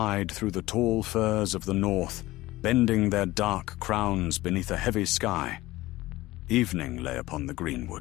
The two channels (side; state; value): right; quieter; 18.0 dB